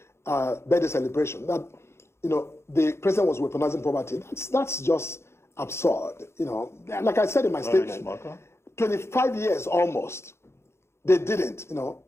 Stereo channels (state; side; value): late; right; 0.13 ms